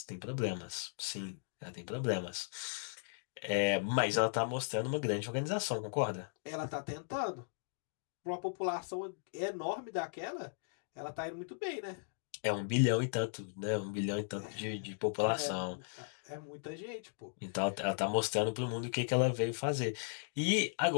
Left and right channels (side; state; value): right; silent; digital silence